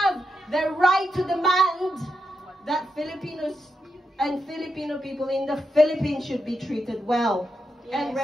the right to demand that Filipinos and Filipino people in the Philippines should be treated well and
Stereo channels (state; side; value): normal; both; correlation 0.85